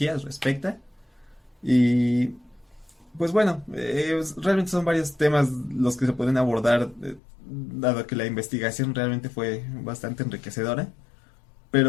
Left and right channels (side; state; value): right; drops out; at 7.2 s